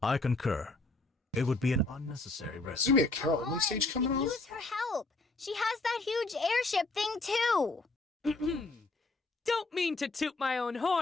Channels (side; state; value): right; quieter; 3.2 dB